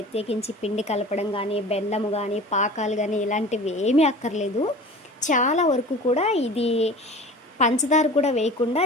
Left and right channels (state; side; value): normal; both; correlation 0.39